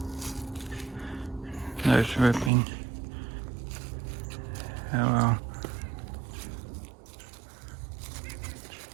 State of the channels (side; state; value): left; drops out; at 2.5 s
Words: Note's ripping. Oh well.